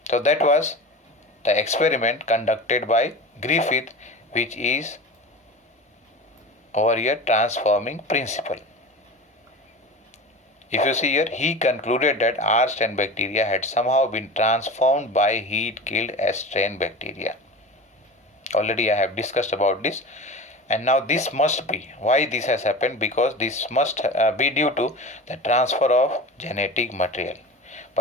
So that was the experiment conducted by Griffith, which is over here transforming principle. If you see here, he concluded that R strain bacteria had somehow been transformed by heat killed S strain bacteria. Already I have discussed about this, and now this must be why this has happened, because this must be due to the transfer of genetic material.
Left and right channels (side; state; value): both; normal; correlation 0.31